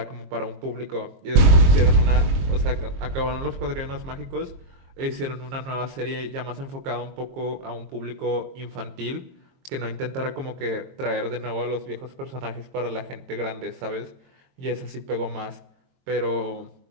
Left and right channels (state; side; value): late; left; 22 ms